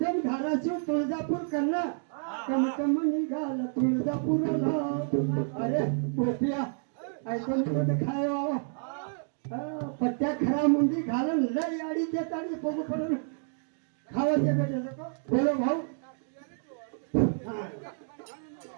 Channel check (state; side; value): silent; left; digital silence